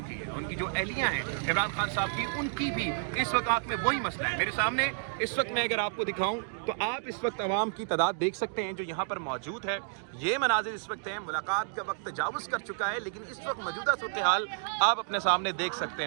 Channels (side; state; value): left; silent; digital silence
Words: है। उनकी जो अहलियाँ हैं इमरान खान साहब की, उनकी भी इस वक्त आँख में वही मसला है। मेरे सामने इस वक्त मैं अगर आपको दिखाऊं तो आप इस वक्त अवाम की तादाद देख सकते हैं जो यहाँ पर मौजूद है। ये मनाजिर इस वक्त हैं, मुलाकात का वक्त तजावुज़ कर चुका है, लेकिन इस वक्त मौजूदा सूरत हाल आप अपने सामने देख सकते